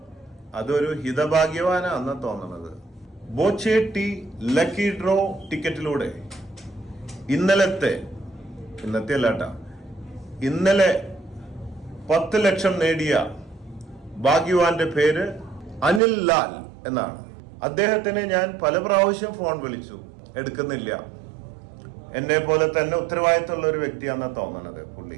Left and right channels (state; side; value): drops out; left; at 16.0 s